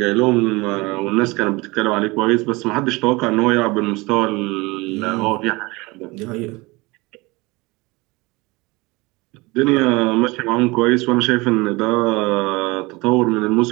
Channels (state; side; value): quieter; left; 23.7 dB